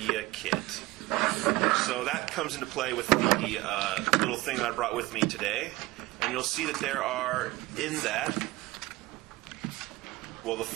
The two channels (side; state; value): left; quieter; 19.6 dB